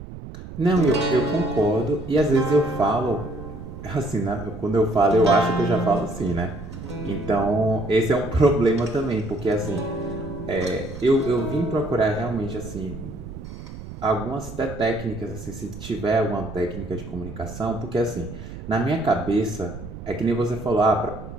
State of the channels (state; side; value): noise; right; rumble, 12 dB below the sound